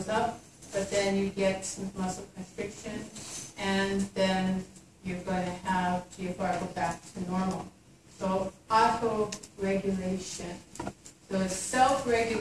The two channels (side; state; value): both; identical; correlation 1.00